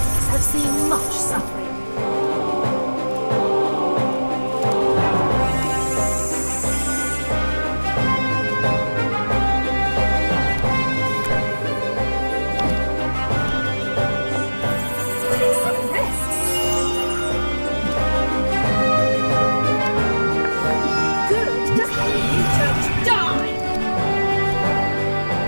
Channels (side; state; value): both; inverted; correlation -1.00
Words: have seen much suffering.